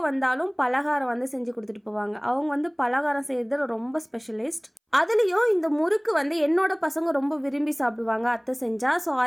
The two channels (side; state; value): both; identical; correlation 1.00